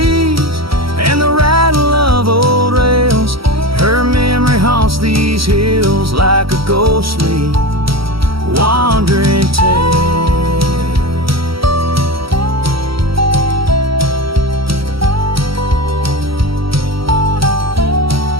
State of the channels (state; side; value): late; left; 0.75 ms